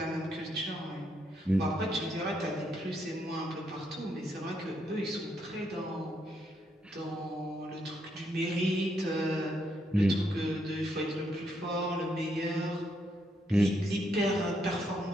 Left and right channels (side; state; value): both; normal; correlation 0.77